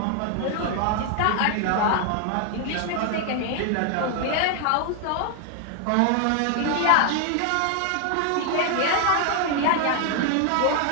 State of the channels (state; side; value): different; both; correlation 0.00